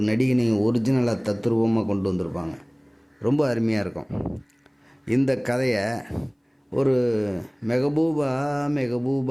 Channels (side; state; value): both; identical; correlation 1.00